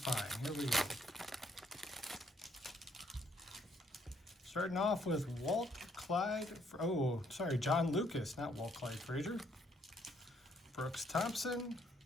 Here we go. Starting off with John Lucas, not Walt Clyde Frazier. Brooks Thompson,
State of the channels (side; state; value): both; normal; correlation 0.69